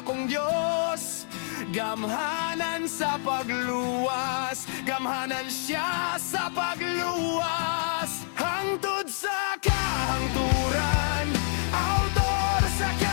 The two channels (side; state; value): right; silent; 60 dB below the other